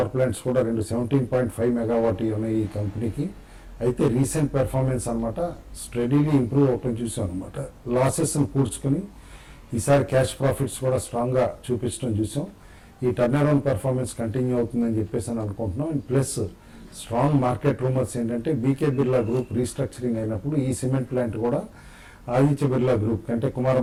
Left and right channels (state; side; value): identical; both; correlation 1.00